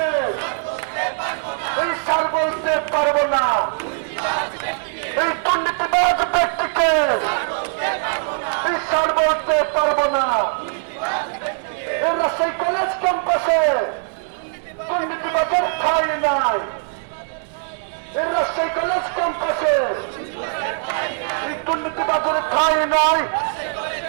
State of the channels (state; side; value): silent; left; digital silence